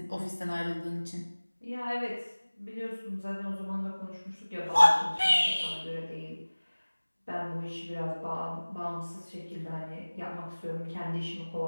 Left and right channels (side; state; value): both; inverted; correlation -1.00